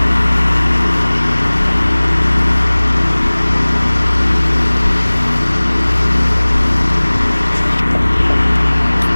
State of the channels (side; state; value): both; inverted; correlation -1.00